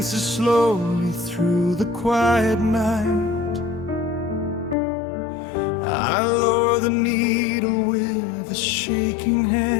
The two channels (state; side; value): drops out; right; at 4.8 s